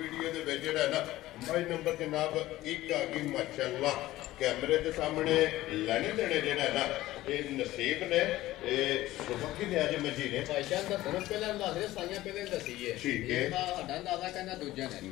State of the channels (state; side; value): quieter; right; 16.2 dB